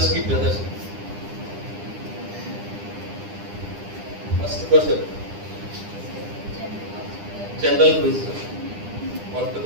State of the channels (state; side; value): late; left; 9.9 ms